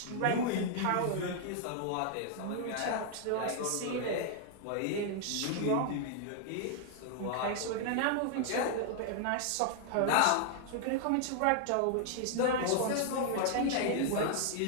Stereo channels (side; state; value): both; different; correlation 0.00